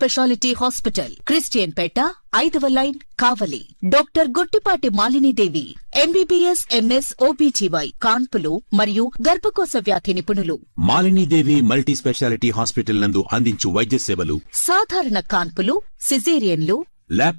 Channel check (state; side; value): inverted; both; correlation -1.00